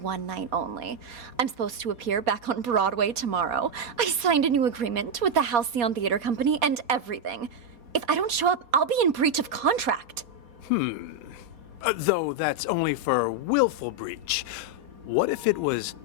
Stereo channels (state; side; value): late; left; 4.2 ms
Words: night only. I'm supposed to appear back on Broadway tomorrow. I signed a new agreement with the Halcyon Theater Company and everything. If I don't show up, I'll be in breach of contract. Though that's only for willful breach. What if it was